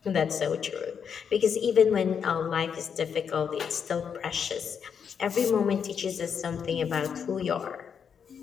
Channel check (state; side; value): quieter; right; 7.1 dB